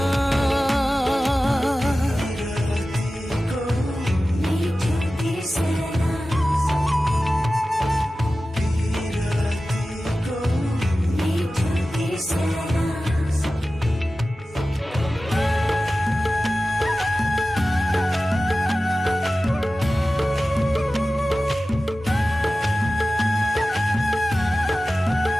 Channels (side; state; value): both; normal; correlation 0.95